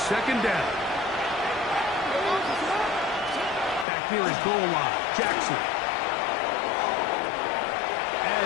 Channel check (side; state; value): right; drops out; at 3.9 s